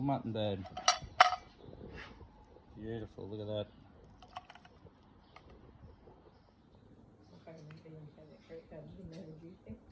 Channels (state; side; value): identical; both; correlation 1.00